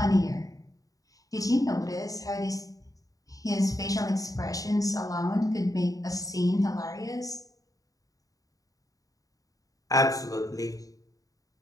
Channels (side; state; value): right; late; 0.17 ms